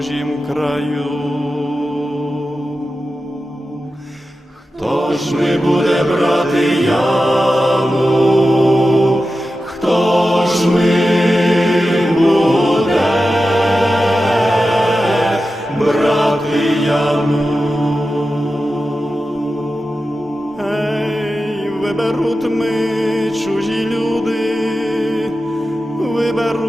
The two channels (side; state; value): both; normal; correlation 0.92